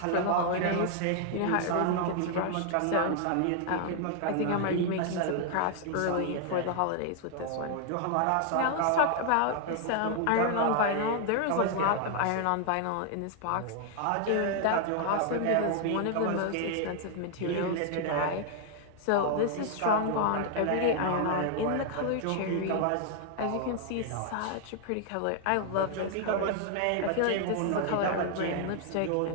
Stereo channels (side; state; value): both; different; correlation 0.00